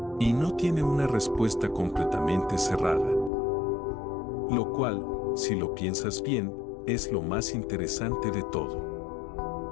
Y no tiene una respuesta completamente cerrada. Lo cual, si lo piensas bien, es lo más interesante de todo.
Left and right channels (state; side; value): drops out; right; at 3.3 s